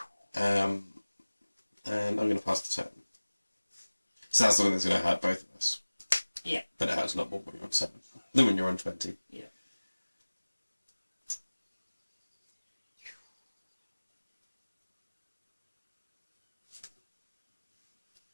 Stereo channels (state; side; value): inverted; both; correlation -1.00